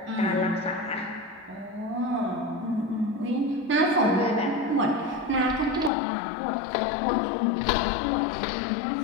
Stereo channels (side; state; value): right; drops out; at 5.9 s